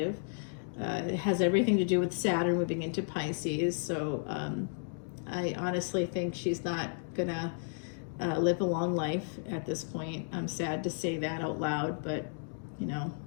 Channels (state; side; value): silent; right; digital silence